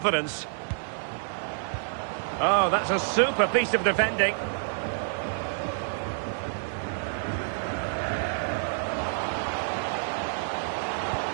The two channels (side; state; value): left; silent; 59 dB below the other